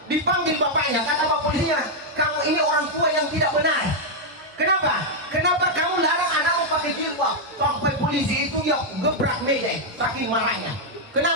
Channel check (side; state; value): both; normal; correlation -0.02